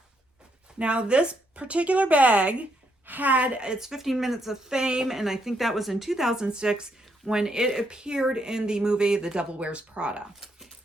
Now, this particular bag had its 15 minutes of fame, and I think that was in 2006 when it appeared in the movie The Devil Wears Prada.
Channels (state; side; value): normal; both; correlation 0.76